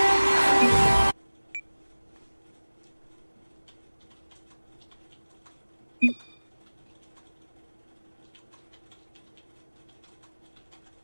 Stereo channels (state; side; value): inverted; both; correlation -1.00